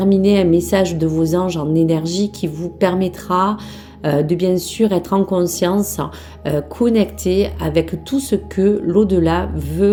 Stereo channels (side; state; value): both; identical; correlation 1.00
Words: un message de vos anges en énergie qui vous permettra de bien sûr être en conscience, connecté avec tout ce que l'au-delà